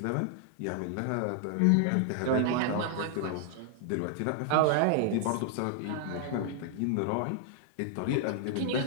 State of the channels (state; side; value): different; both; correlation 0.00